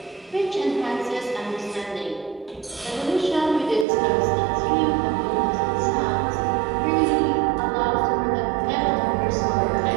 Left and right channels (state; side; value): drops out; left; at 3.9 s